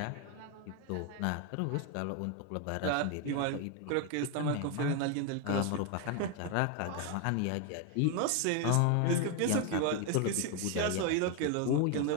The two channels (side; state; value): both; different; correlation 0.01